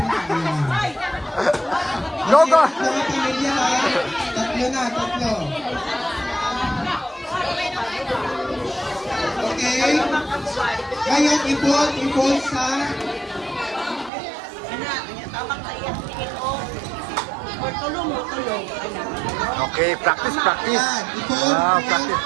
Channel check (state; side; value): drops out; left; at 14.1 s